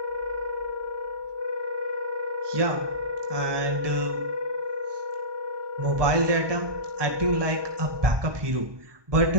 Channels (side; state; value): left; late; 1.2 ms